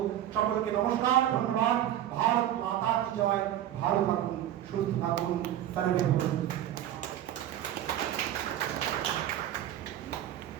সকলকে নমস্কার, ধন্যবাদ। ভারত মাতা কি জয়। ভালো থাকুন, সুস্থ থাকুন, সর্বে ভবন্তু।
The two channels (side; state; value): left; quieter; 11.8 dB